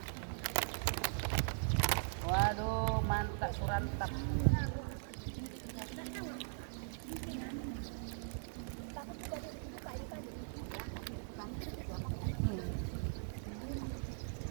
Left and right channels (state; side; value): silent; left; 51 dB below the other